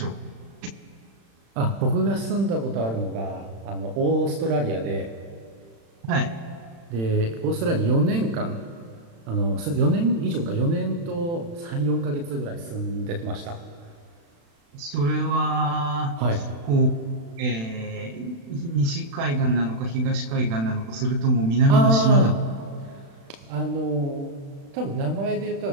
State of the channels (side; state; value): left; late; 36 ms